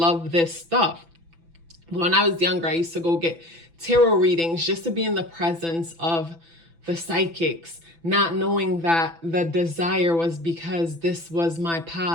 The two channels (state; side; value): late; left; 6.0 ms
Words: this stuff. But when I was younger, I used to go get tarot readings just to be in the presence of the psychics, not knowing that the desire was because this was my